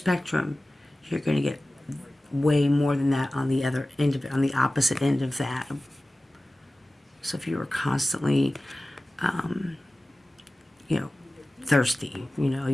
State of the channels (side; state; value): both; normal; correlation 0.96